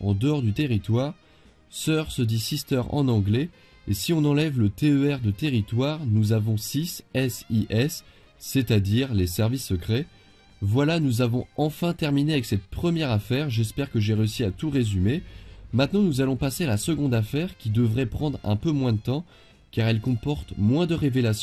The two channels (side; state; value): both; identical; correlation 1.00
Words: en dehors du territoire. Sœur se dit sister en anglais, et si on enlève le TER de territoire, nous avons SIS, SIS, c'est-à-dire les services secrets. Voilà, nous avons enfin terminé avec cette première affaire, j'espère que j'ai réussi à tout résumer. Maintenant nous allons passer à la seconde affaire qui devrait prendre un peu moins de temps, car elle comporte moins de